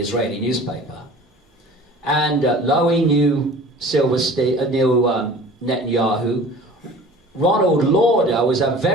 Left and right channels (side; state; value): both; normal; correlation 0.44